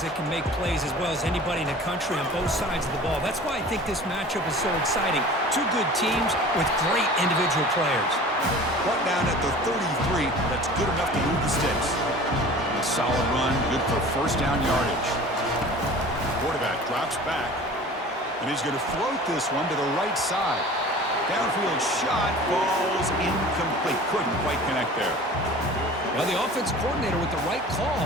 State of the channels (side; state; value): both; normal; correlation 0.42